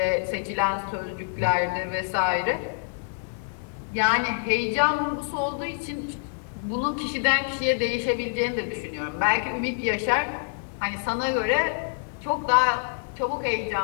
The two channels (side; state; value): right; silent; digital silence